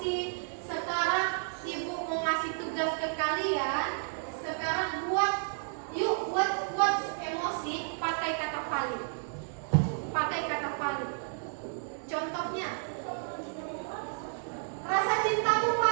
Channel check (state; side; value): silent; left; 57 dB below the other